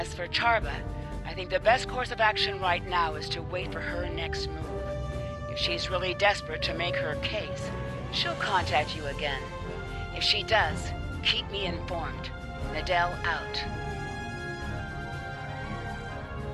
for Charva, I think the best course of action right now is to wait for her next move. If she's really desperate to make her case, she'll contact you again. If she does, keep me informed. Nadell out.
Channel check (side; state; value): both; identical; correlation 1.00